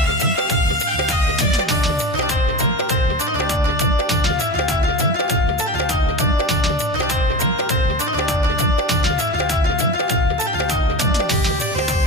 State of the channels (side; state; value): both; normal; correlation 0.29